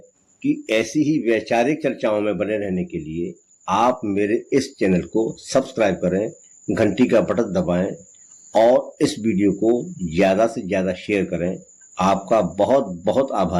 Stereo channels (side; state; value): both; identical; correlation 1.00